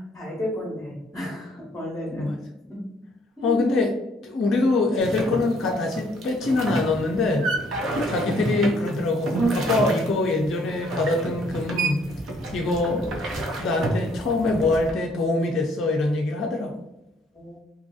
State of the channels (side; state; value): both; normal; correlation 0.64